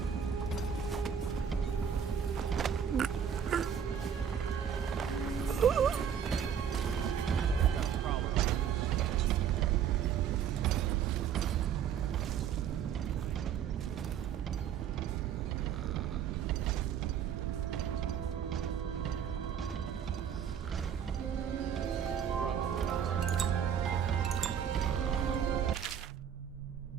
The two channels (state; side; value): quieter; left; 8.3 dB